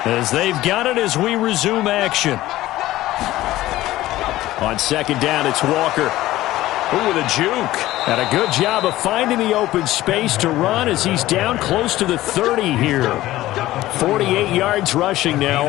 As they've got it as we resume action. On 2nd down, it's Walker. Ooh, with a juke. And a good job of finding the open space to run as he's down close to the 30 here. 48 yards rushing now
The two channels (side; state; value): right; quieter; 16.0 dB